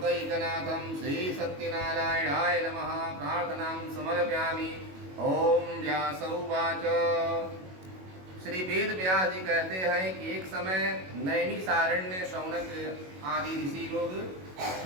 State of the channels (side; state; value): left; late; 21 ms